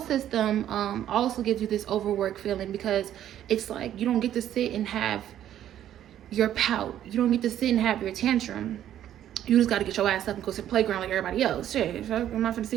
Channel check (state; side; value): quieter; left; 11.3 dB